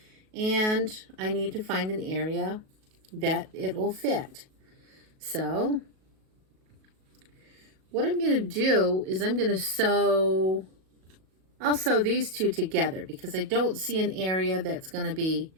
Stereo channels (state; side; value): late; left; 37 ms